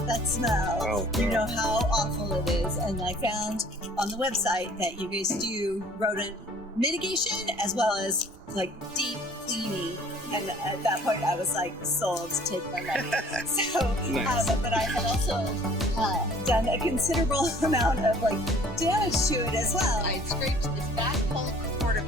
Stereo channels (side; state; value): both; normal; correlation 0.53